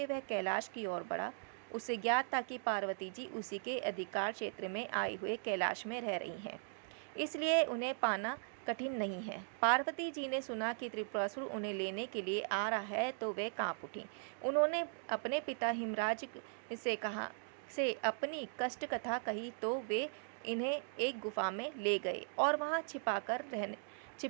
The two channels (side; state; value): left; silent; digital silence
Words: वह कैलाश की ओर बढ़ा। उसे ज्ञात था कि पार्वती जी उसी के अधिकार क्षेत्र में आए हुए कैलाश में रह रही हैं, इसलिए उन्हें पाना कठिन नहीं है। पार्वती जी ने सुना कि त्रिपुरासुर उन्हें लेने के लिए आ रहा है तो वे कांप उठी। उन्होंने अपने पिता हिमराज से अपनी कष्ट कथा कही तो वे इन्हें एक गुफा में ले गए और वहां